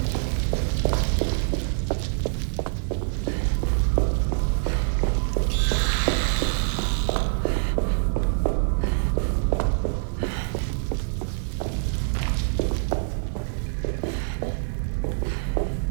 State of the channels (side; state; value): left; silent; digital silence